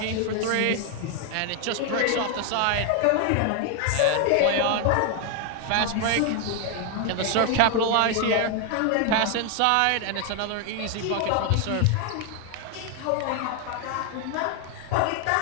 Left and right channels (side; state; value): both; different; correlation 0.01